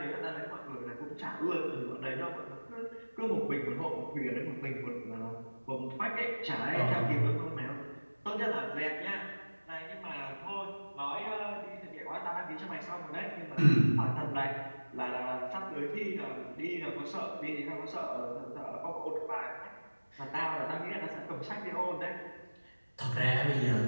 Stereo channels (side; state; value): both; inverted; correlation -1.00